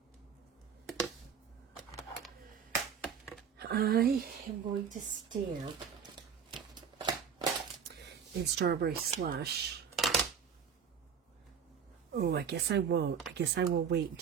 I am going to stamp in Strawberry Slush. Oh, I guess I won't. I guess I will wait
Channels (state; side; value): quieter; left; 7.1 dB